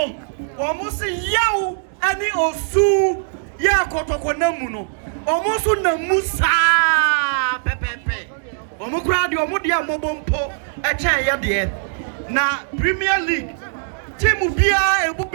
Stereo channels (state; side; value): silent; left; digital silence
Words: Omusi Yao Ani Osu Ya Kotoko Namuno Omusu Namusa Pepepe Omukradi Omudia Mobompo Eche Yadie na Premier League team bia